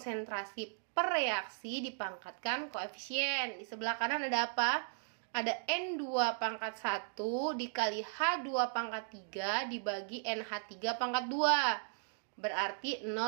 per reaksi dipangkatkan koefisien. Di sebelah kanan ada apa? Ada N2 pangkat 1 dikali H2 pangkat 3 dibagi NH3 pangkat 2. Berarti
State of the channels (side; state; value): left; silent; digital silence